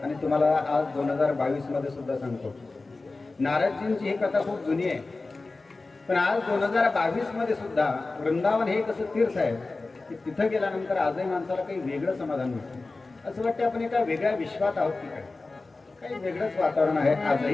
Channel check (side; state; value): right; quieter; 3.5 dB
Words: आणि तुम्हाला आज 2022 मध्ये सुद्धा सांगतो, नारदजींची ही कथा खूप जुनी आहे, पण आज 2022 मध्ये सुद्धा वृंदावन हे कसं तीर्थ आहे की तिथं गेल्यानंतर आजही माणसाला काही वेगळं समाधान मिळतं. असं वाटतं आपण एका वेगळ्या विश्वात आहोत की काय, काही वेगळंच वातावरण आहे